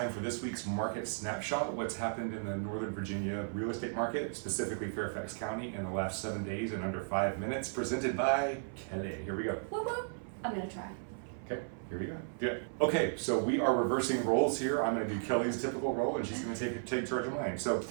for this week's Market Snapshot. What's happened in the Northern Virginia real estate market, specifically Fairfax County, in the last 7 days in under 5 minutes, presented by Kelly. Here we go. Whoop, whoop. I'm gonna try. Okay, here we go. Do it. Okay, so we are reversing roles here. I'm gonna do Kelly's typical role and she's gonna take charge of mine. So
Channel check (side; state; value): left; silent; 54 dB below the other